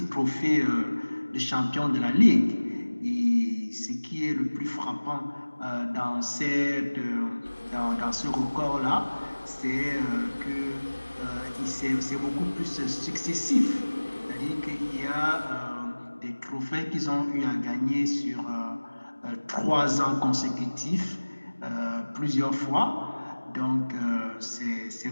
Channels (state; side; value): inverted; both; correlation -1.00